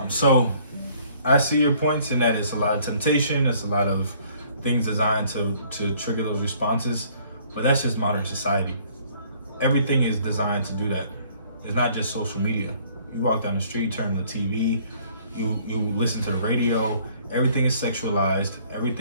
So I see your points in that it's a lot of temptation. It's a lot of things designed to trigger those responses. But that's just modern society. Everything is designed to do that. It's not just social media. You walk down the street, turn on the TV, you listen to the radio. Everything is sexualized.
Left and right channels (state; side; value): inverted; both; correlation -0.59